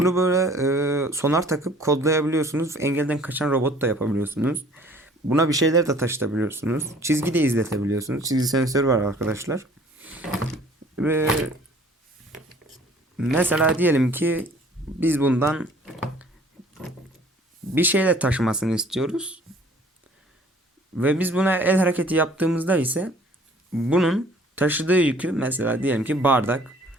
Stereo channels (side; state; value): both; normal; correlation 0.54